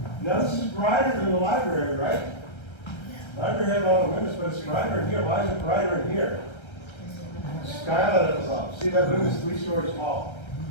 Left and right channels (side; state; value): right; late; 1.3 ms